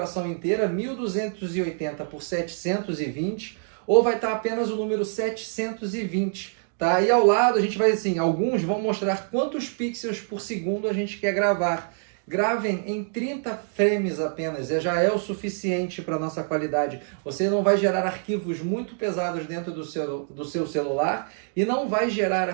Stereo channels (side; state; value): left; silent; digital silence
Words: inteira 1280 por 720 ou vai estar apenas o número 720. Tá? E ao lado a gente vai assim, alguns vão mostrar quantos pixels por segundo a gente quer gravar. Gravem em 30 frames apenas, já é o suficiente para a nossa qualidade. Você não vai gerar arquivos muito pesados dentro do seu celular e não vai gerar